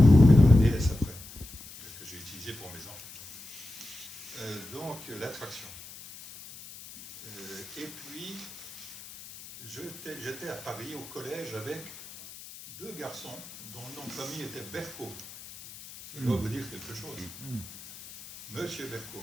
Et dans la DS après, que j'ai utilisée pour mes enfants. Donc, la traction. Et puis, j'étais à Paris, au collège, avec 2 garçons dont le nom de famille était Berco. Ça doit vous dire quelque chose. Monsieur Berco.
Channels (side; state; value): left; noise; hiss, 15 dB below the sound